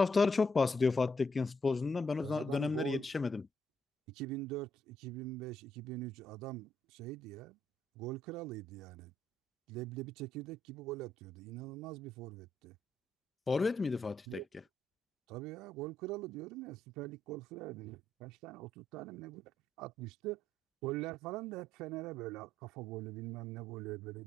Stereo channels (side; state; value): both; normal; correlation 0.76